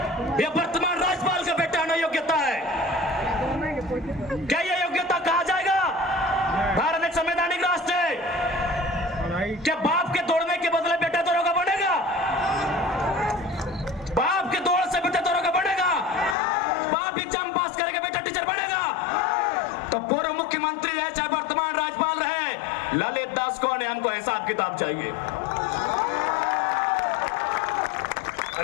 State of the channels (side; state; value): right; drops out; at 16.4 s